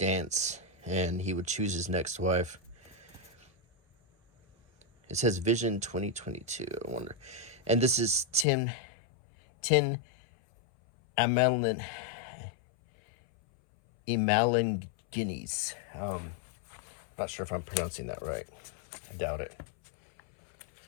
and he would choose his next wife. It says Vision 2022. I wonder. And this is Tin Amalin Guineas. Not sure if I'm pronouncing that right. I doubt it.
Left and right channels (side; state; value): right; drops out; at 8.5 s